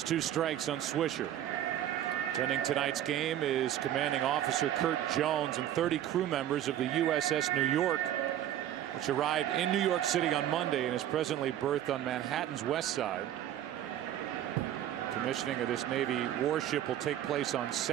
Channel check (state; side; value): quieter; left; 11.5 dB